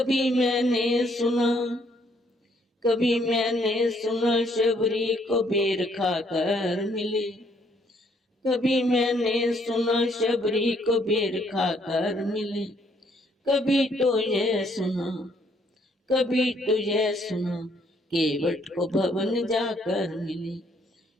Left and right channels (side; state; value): both; normal; correlation 0.68